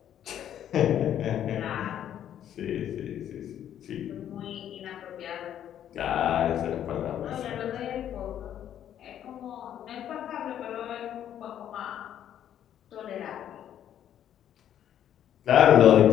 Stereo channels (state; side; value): quieter; right; 10.4 dB